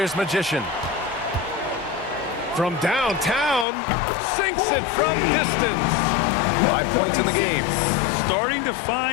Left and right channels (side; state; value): right; drops out; at 3.7 s